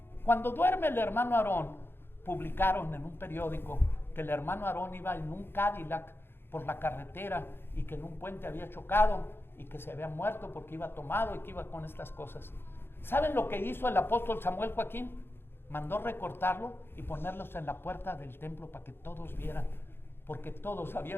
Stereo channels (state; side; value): late; right; 0.11 ms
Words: Cuando duerme el hermano Aarón, publicaron en un periódico que el hermano Aarón iba en un Cadillac por la carretera y que en un puente había chocado y que se había muerto porque iba tomado y que iba con estas cosas. ¿Saben lo que hizo el apóstol Samuel Joaquín? Mandó recortarlo y ponerlos en la puerta del templo para que todos vieran, porque todos